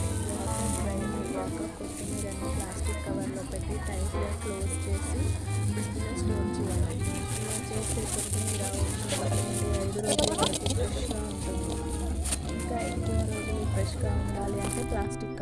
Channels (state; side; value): identical; both; correlation 1.00